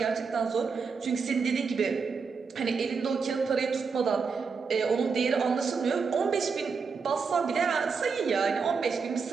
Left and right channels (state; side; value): quieter; left; 5.2 dB